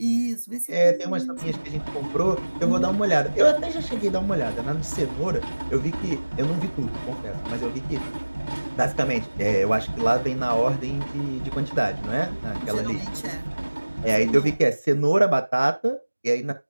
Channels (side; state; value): both; inverted; correlation -1.00